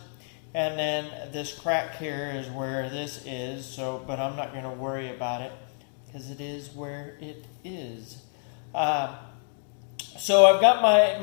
and then this crack here is where this is. So, but I'm not going to worry about it because it is where it is. So I've got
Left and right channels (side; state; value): right; silent; digital silence